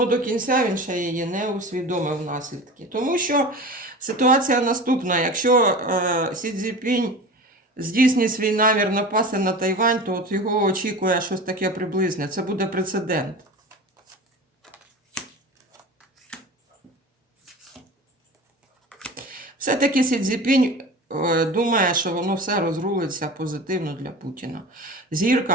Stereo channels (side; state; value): both; normal; correlation 0.34